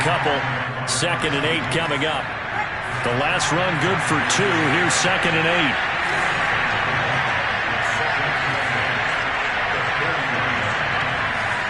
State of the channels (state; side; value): identical; both; correlation 1.00